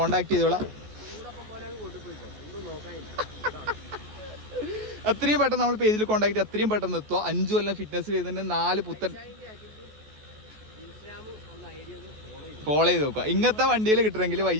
ചെയ്തോളാം. എത്രയും പെട്ടെന്ന് നമ്മൾ പേജിൽ കോണ്ടാക്ട് ചെയ്ത് അത്രയും പെട്ടെന്ന് എത്തുക. 5 കൊല്ലം ഫിറ്റ്നസ് ചെയ്തിട്ട് 4 പുത്തൻ ഫോളോ ചെയ്ത് നോക്കുക. ഇങ്ങനത്തെ വണ്ടിയിൽ കിട്ടണമെങ്കിൽ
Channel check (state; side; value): late; left; 14 ms